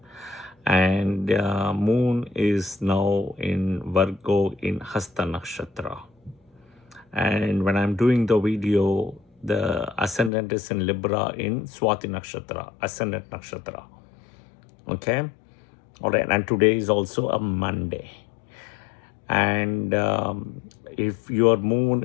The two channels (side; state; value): right; drops out; at 10.3 s